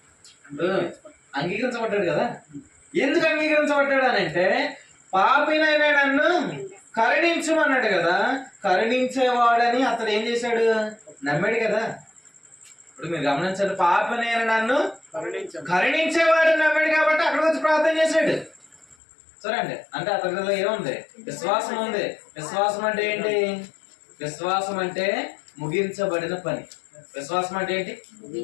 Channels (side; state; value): right; drops out; at 18.9 s